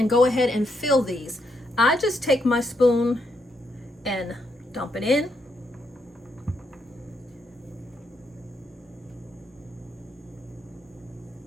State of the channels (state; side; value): normal; both; correlation 0.78